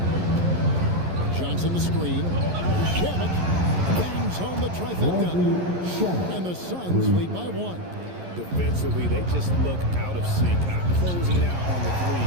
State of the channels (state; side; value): late; left; 11 ms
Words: Johnson the screen. Shamet bangs home the trifecta. And the Suns lead by 1. Defensively, they just look out of sync, not closing out on the threes